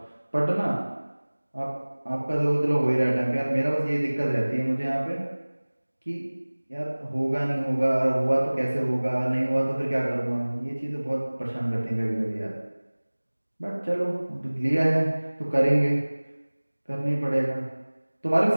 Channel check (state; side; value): inverted; both; correlation -1.00